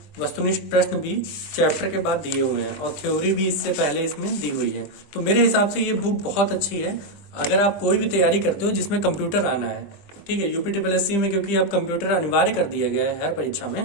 वस्तुनिष्ठ प्रश्न भी चैप्टर के बाद दिए हुए हैं, और थ्योरी भी इससे पहले इसमें दी हुई है। तो मेरे हिसाब से ये बुक बहुत अच्छी है अगर आप कोई भी तैयारी करते हो जिसमें कंप्यूटर आना है। ठीक है, यूपीट्रिपलएससी में क्योंकि अब कंप्यूटर अनिवार्य कर दिया गया है हर परीक्षा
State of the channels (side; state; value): right; late; 20 ms